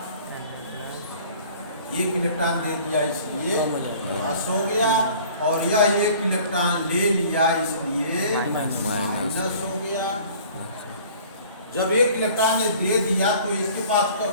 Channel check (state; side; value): inverted; both; correlation -0.49